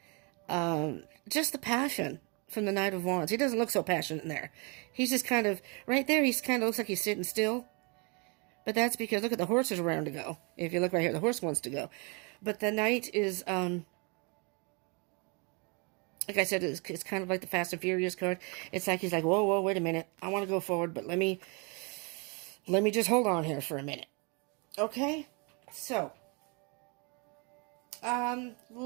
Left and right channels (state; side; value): quieter; left; 32.4 dB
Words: just the passion from the Knight of Wands. He doesn't look so passionate in there. He's just kind of, right there, he's kind of looks like he's sitting still. But that's because, look at the horses around to go. If you look right here, the horse wants to go. But the Knight is, like I said, it's kind of like the Fast and Furious card. It's like he's like, whoa, wait a minute. I want to go forward, but let me just hold on here for a minute. Okay? So,